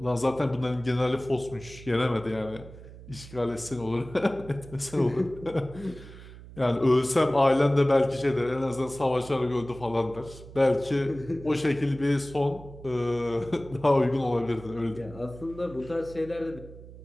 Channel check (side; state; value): right; noise; hum, 17 dB below the sound